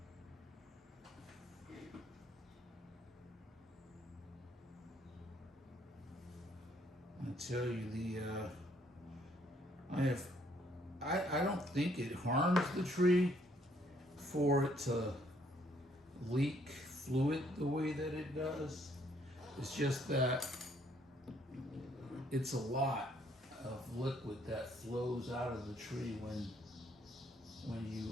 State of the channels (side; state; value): both; normal; correlation 0.67